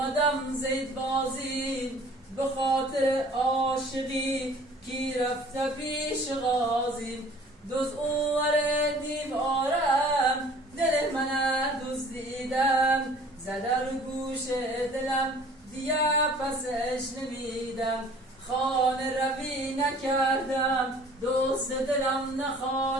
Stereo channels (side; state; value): both; normal; correlation 0.51